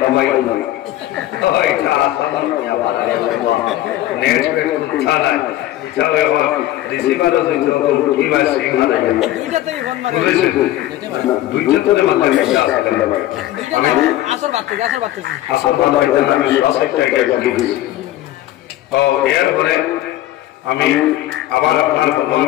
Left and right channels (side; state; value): right; quieter; 14.5 dB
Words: ওইটা আসলে আবার নেট পে কথা নাই চলে আমার রিসিভারও হইতো কি ভাই সিগনাল আইয়া দুইটাতেই ফোন মারি দুইটাতে মানে আসলে আমি আসল বাত আমি সবটা গেছি ও এরপরে আমি আবার আপনার